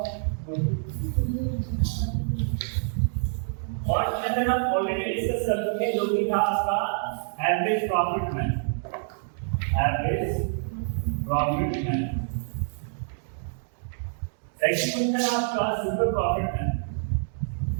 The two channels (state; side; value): silent; left; digital silence